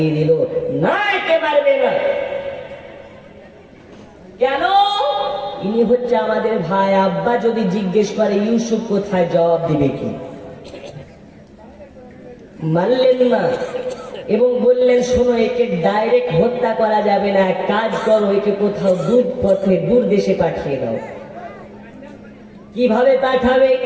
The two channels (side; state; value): both; identical; correlation 1.00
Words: দিল, না একে মারবে না। কেন? ইনি হচ্ছে আমাদের ভাই। আব্বা যদি জিজ্ঞেস করে ইউসুফ কোথায়, জবাব দিবে কি? মানলেন না এবং বললেন, শোনো, একে ডাইরেক্ট হত্যা করা যাবে না, এক কাজ করো, একে কোথাও দূর পথে দূর দেশে পাঠিয়ে দাও। কিভাবে পাঠাবে?